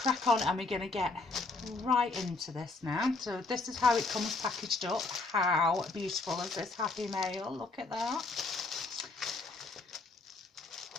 on and we're going to get right into this now. So this is how it comes packaged up. How beautiful is this happy mail? Look at that.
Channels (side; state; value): right; quieter; 3.6 dB